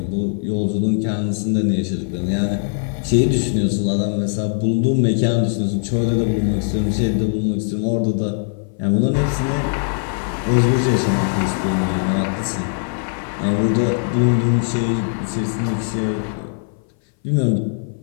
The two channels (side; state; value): right; silent; 59 dB below the other